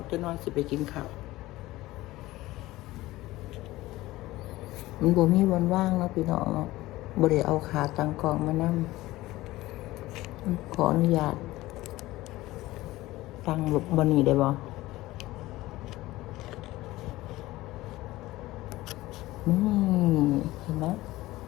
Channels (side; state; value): right; quieter; 17.9 dB